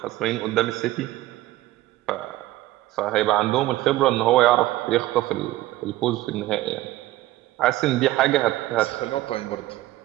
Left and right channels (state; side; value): quieter; left; 16.4 dB